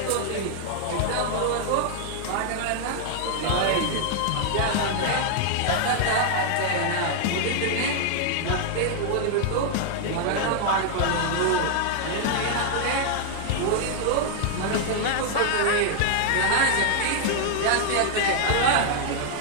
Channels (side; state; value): both; different; correlation 0.00